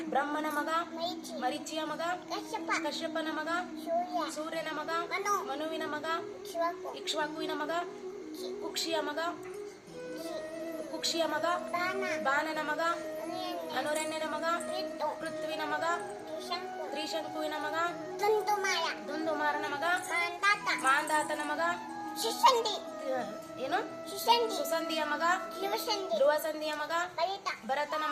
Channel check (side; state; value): both; identical; correlation 1.00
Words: ಬ್ರಹ್ಮನ ಮಗ ಮರೀಚಿಯ ಮಗ ಕಶ್ಯಪನ ಮಗ ಸೂರ್ಯನ ಮಗ ಮನುವಿನ ಮಗ ಇಕ್ಷ್ವಾಕುವಿನ ಮಗ ಕುಕ್ಷಿಯ ಮಗ ಬಾಣನ ಮಗ ಅನುರಣ್ಯನ ಮಗ ಪೃಥ್ವಿನ ಮಗ ತ್ರಿಶಂಕುವಿನ ಮಗ ದುಂದುಮಾರನ ಮಗ ಮಾಂದಾತನ ಮಗ ಏನು ಸುಸಂಧಿಯ ಮಗ ಧ್ರುವಸಂಧಿಯ ಮಗ ಭರತನ